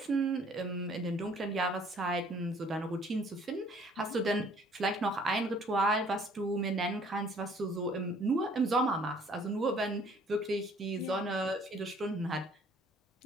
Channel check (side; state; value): both; normal; correlation 0.58